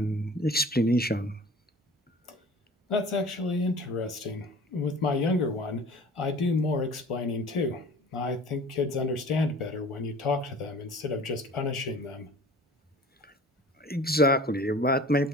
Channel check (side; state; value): both; normal; correlation 0.44